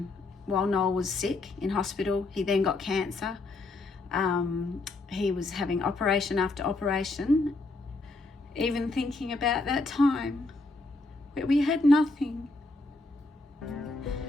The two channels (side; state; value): right; quieter; 3.2 dB